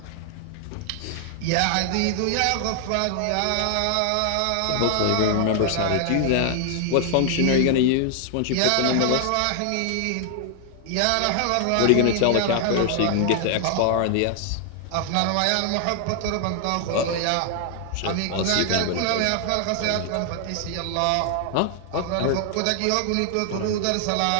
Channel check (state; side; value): different; both; correlation 0.00